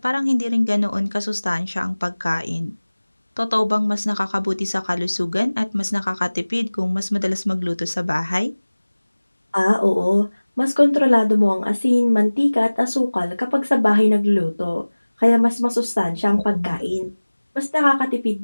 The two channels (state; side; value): inverted; both; correlation -1.00